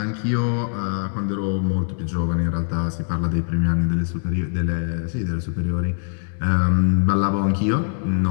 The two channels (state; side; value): silent; right; digital silence